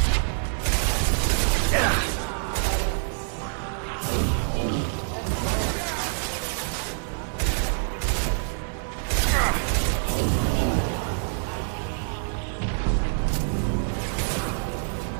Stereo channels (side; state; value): left; silent; digital silence